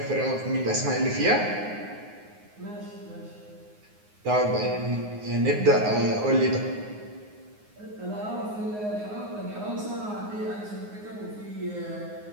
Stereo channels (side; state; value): left; late; 9.6 ms